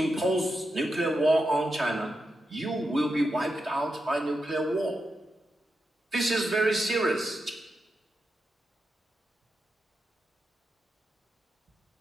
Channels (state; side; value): normal; both; correlation 0.87